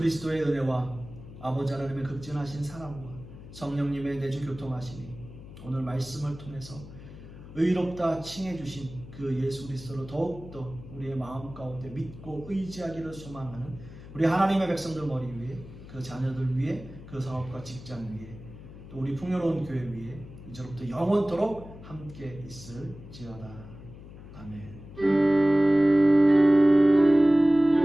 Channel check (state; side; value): noise; left; hum, 16 dB below the sound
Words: 은혜와 아버지 하나님의 극진하신 사랑과 성령님의 내주 교통하심이 오늘 말씀을 통해서 의롭다 칭해 주신 그 예수 그리스도를 더욱더 우리의 마음 가운데 믿고 의지하기를 소망하는 우리 하나님의 백성들 머리 위에, 그 자녀들 위에, 그 사업과 직장 위에, 또 우리 풍요로운 교회 위에 이제로부터 영원토록 함께 있을지어다. 아멘.